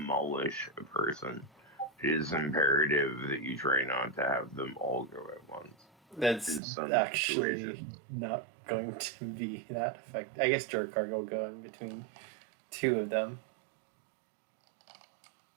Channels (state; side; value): drops out; left; at 6.6 s